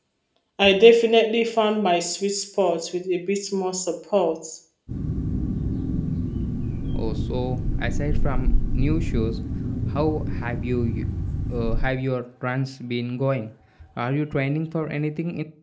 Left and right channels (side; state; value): both; identical; correlation 1.00